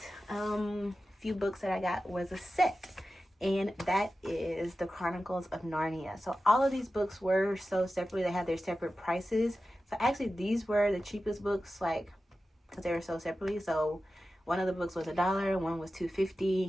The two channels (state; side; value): normal; both; correlation 0.93